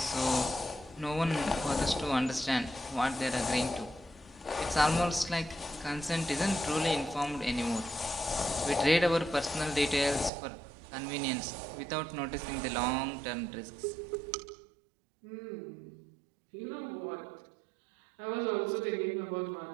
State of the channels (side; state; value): left; drops out; at 10.3 s